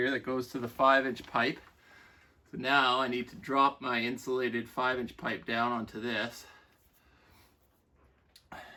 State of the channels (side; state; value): both; identical; correlation 1.00